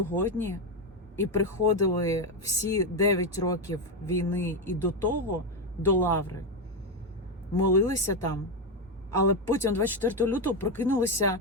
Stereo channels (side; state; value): both; normal; correlation 0.08